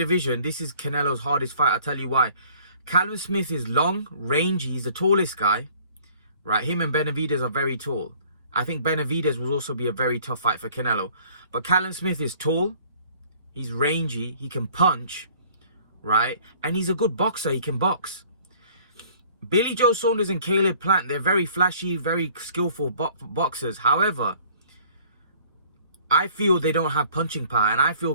this is Canelo's hardest fight. I'll tell you why. Callum Smith is long, rangy. He's the tallest guy. Right? Him and Benavidez are very tall. I think Benavidez will also be a very tough fight for Canelo. But Callum Smith is tall. He's rangy. He can punch. Right? And he's a good boxer. He can box. Billy Joe Saunders and Caleb Plant, they're very flashy, very skillful boxers. However, I feel they don't have punching power. And I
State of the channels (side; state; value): both; inverted; correlation -0.55